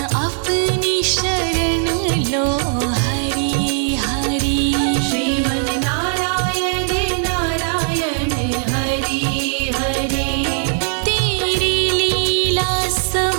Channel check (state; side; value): silent; left; 57 dB below the other